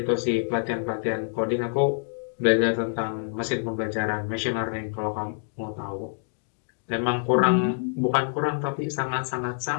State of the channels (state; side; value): silent; right; digital silence